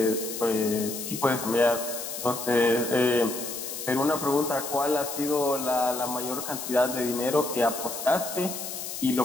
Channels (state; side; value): noise; left; hiss, 7 dB below the sound